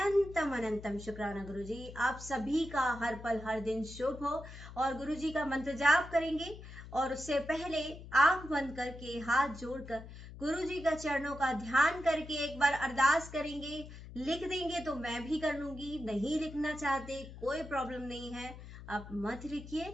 अनंतम शुक्राना गुरु जी। आप सभी का हर पल हर दिन शुभ हो और गुरु जी का मंत्र जाप करेंगे, और उससे पहले आंख बंद करके हाथ जोड़कर गुरु जी का चरणों का ध्यान करके एक बार अरदास करेंगे। लिख देंगे तो मैं भी कर लूंगी, नहीं लिखना चाहते कोई प्रॉब्लम नहीं है, आप मत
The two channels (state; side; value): noise; left; hum, 14 dB below the sound